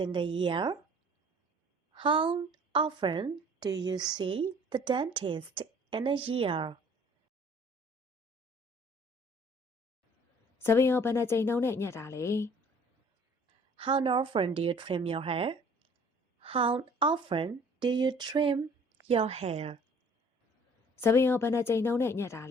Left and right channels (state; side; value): normal; both; correlation 0.53